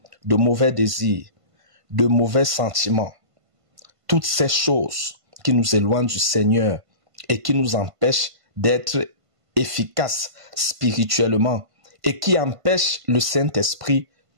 de mauvais désirs, de mauvais sentiments. Toutes ces choses qui nous éloignent du Seigneur et qui nous empêchent d'être efficaces spirituellement et qui empêchent le Saint-Esprit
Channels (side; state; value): left; late; 1.5 ms